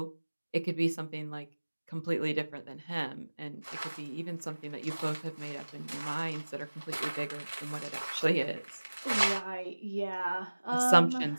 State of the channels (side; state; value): both; inverted; correlation -1.00